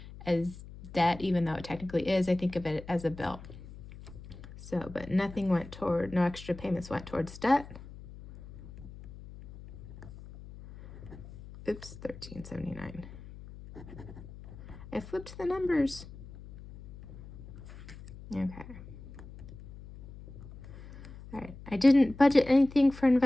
as debt, even though it technically is. I think of it as a bill. So, but nothing went toward, no extra payments went towards debt. Oops, $13.79. I flipped the numbers. Okay. All right, I didn't budget anything for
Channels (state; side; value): noise; left; hum, 16 dB below the sound